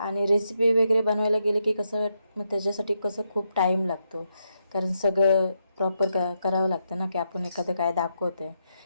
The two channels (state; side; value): inverted; both; correlation -0.82